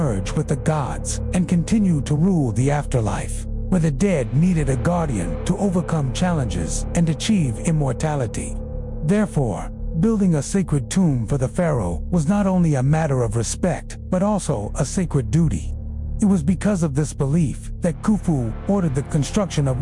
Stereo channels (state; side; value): identical; both; correlation 1.00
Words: with the gods and continue to rule the afterlife, where the dead needed a guardian to overcome challenges and achieve immortality. Therefore, building a sacred tomb for the pharaoh was not only a matter of respect, but also a sacred duty. It was because of this belief that Khufu ordered the construction of